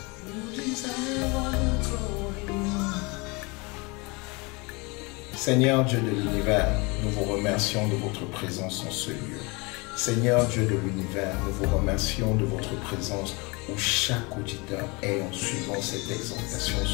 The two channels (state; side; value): quieter; right; 27.6 dB